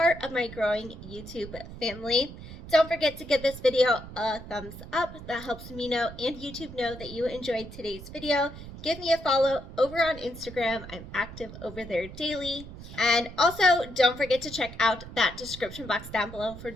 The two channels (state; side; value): noise; right; rumble, 13 dB below the sound